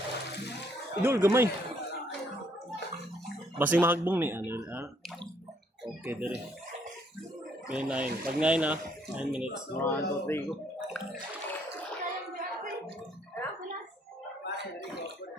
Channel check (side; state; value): both; normal; correlation 0.68